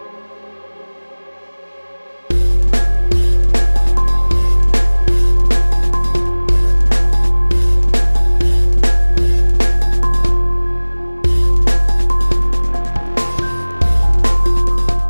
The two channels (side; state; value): both; inverted; correlation -1.00